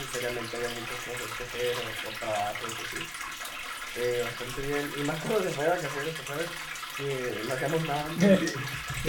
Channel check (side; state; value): both; identical; correlation 1.00